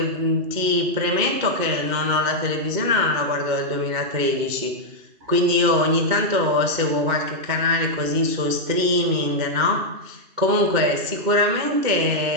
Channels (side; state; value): left; late; 2.2 ms